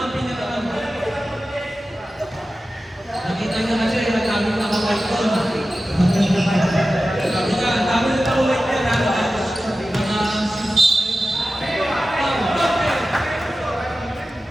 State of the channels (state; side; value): normal; both; correlation 0.94